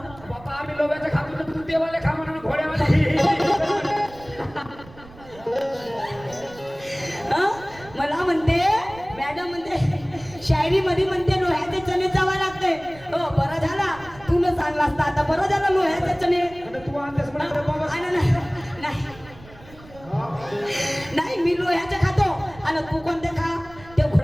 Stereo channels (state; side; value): noise; right; rumble, 21 dB below the sound